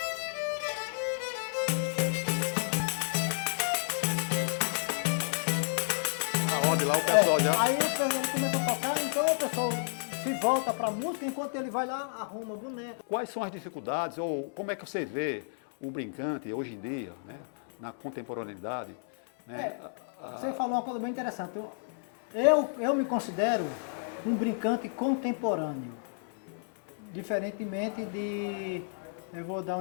Aonde lá o pessoal já... Aí ele começa a tocar, então o pessoal se volta pra música, enquanto ele vai lá, arruma o boneco. Quais são as dificuldades ou como é que você vê o brincante hoje em dia, né? Na contemporaneidade? Né? Você falou uma coisa bem interessante. Eu me considero um brincante contemporâneo. Diferentemente de, eu vou dar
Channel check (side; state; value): right; silent; 57 dB below the other